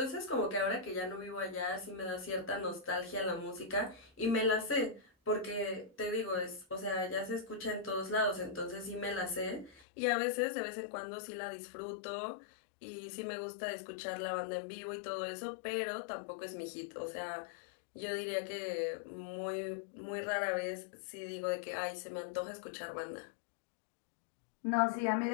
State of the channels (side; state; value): right; drops out; at 9.9 s